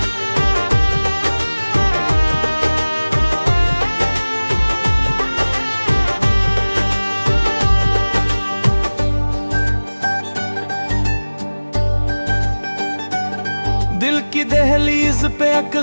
दिल की दहलीज पे एक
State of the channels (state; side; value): inverted; both; correlation -1.00